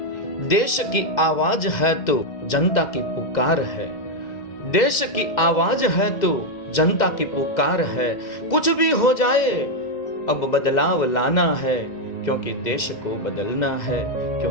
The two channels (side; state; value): right; late; 2.0 ms